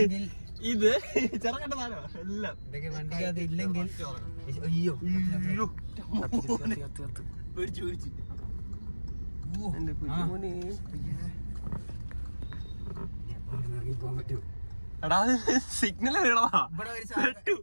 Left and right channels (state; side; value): inverted; both; correlation -1.00